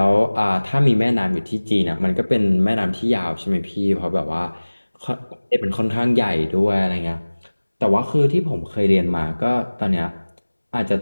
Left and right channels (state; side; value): inverted; both; correlation -1.00